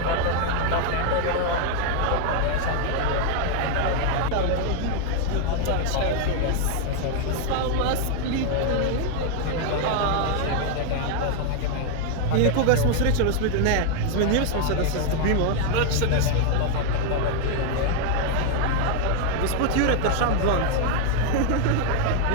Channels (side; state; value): both; different; correlation 0.00